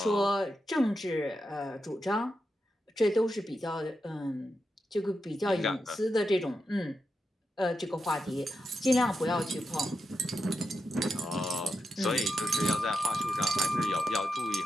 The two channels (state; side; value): normal; both; correlation 0.87